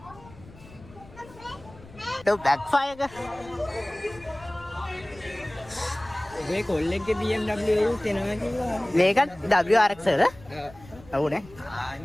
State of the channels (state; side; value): noise; left; rumble, 21 dB below the sound